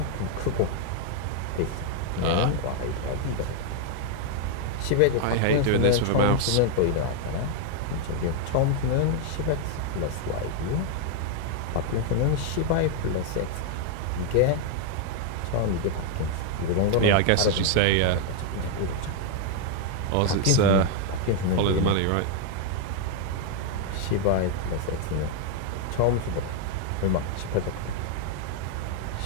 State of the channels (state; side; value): different; both; correlation 0.01